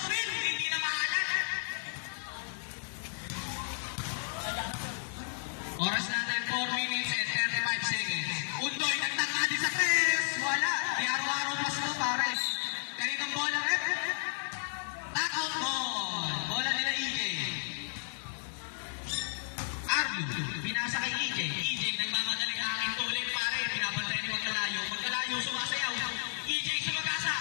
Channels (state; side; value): silent; right; digital silence